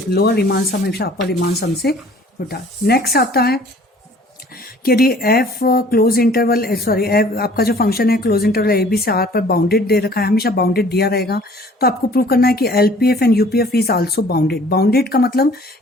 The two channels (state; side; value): normal; both; correlation 0.53